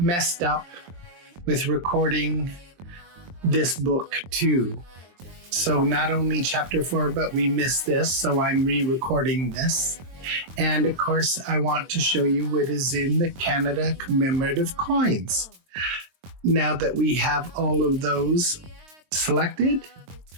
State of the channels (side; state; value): left; late; 23 ms